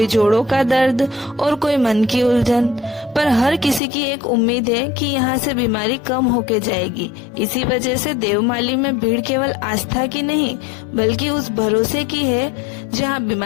जोड़ों का दर्द और कोई मन की उलझन। पर हर किसी की एक उम्मीद है कि यहाँ से बीमारी कम होके जाएगी। इसी वजह से देवमाली में भीड़ केवल आस्था की नहीं बल्कि उस भरोसे की है जहाँ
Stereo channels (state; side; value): drops out; right; at 3.8 s